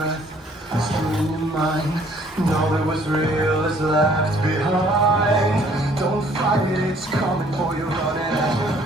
still in your mind. All that was real is left behind. Don't fight it, it's coming for you, running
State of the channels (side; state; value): both; normal; correlation 0.60